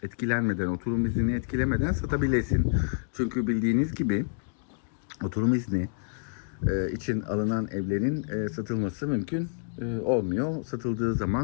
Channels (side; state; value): right; silent; digital silence